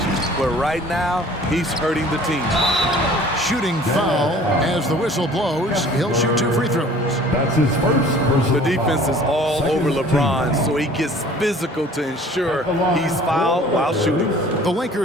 But right now, he's hurting the team. Shooting foul as the whistle blows. He'll shoot 2 free throws. That's his first personal The defense is all Second over LeBron, team. so he gets physical to ensure he's fouled while shooting. The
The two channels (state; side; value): normal; both; correlation 0.49